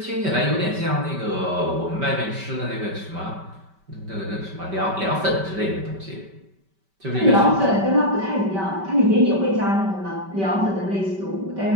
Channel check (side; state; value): left; late; 5.2 ms